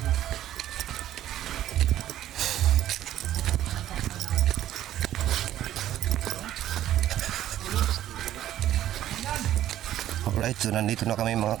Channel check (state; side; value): quieter; left; 12.6 dB